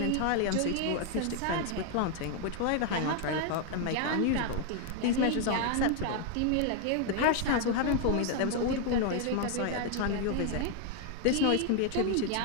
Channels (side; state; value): both; different; correlation 0.00